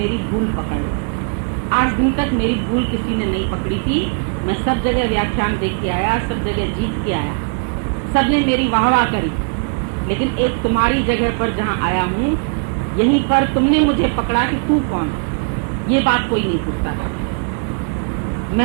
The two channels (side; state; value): left; quieter; 39.6 dB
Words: भूल पकड़ ले। आज दिन तक मेरी भूल किसी ने नहीं पकड़ी थी। मैं सब जगह व्याख्यान देख के आया, सब जगह जीत के आया, सबने मेरी वाहवाह करी, लेकिन एक तुम्हारी जगह पर जहाँ आया हूँ, यहीं पर तुमने मुझे पकड़ा कि तू कौन है। ये बात कोई नहीं पूछता था।